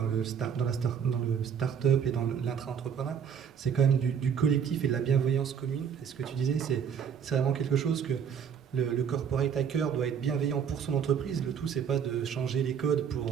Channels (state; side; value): quieter; left; 7.5 dB